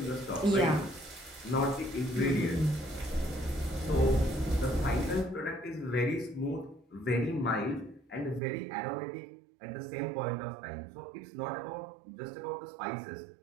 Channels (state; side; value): drops out; left; at 8.4 s